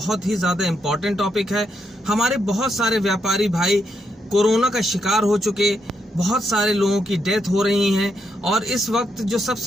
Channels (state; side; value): normal; both; correlation 0.80